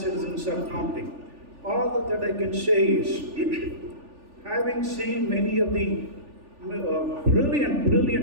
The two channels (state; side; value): late; left; 3.4 ms